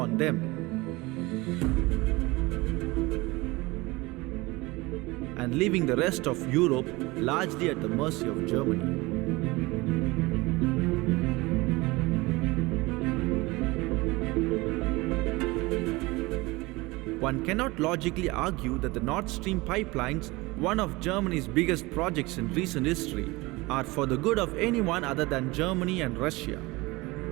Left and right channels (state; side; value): quieter; left; 22.4 dB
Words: them. And leaving the rest of Europe largely at the mercy of Germany. One cannot logically argue that the Nord Stream pipelines, one of Germany's biggest projects in recent history, are for the good of anyone other than Germany and Russia.